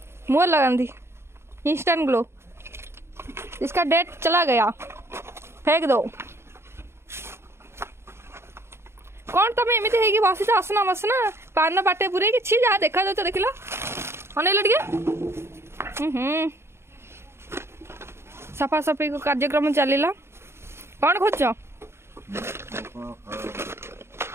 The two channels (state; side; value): late; left; 0.12 ms